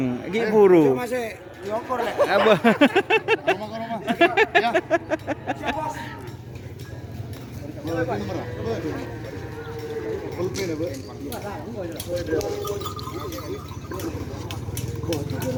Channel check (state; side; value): identical; both; correlation 1.00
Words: iki buru. Masih nyokor lek. Apa? Ya.